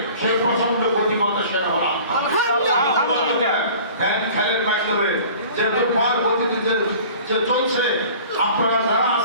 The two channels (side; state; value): both; inverted; correlation -0.45